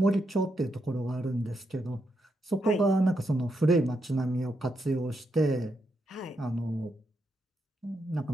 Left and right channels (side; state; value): both; normal; correlation 0.82